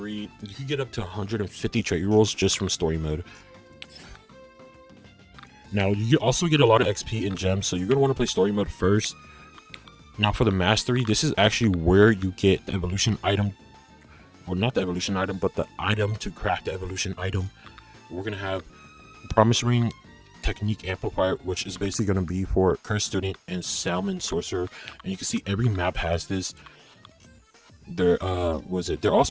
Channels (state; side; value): identical; both; correlation 1.00